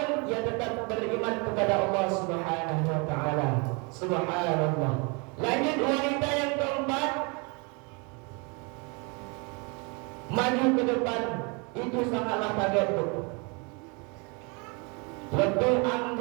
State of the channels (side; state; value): left; quieter; 31.5 dB